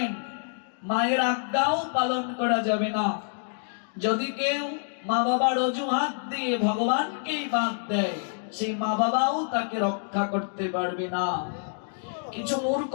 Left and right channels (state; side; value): silent; right; digital silence